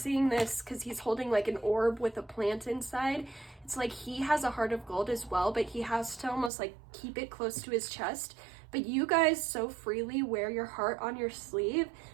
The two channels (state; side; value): drops out; left; at 6.5 s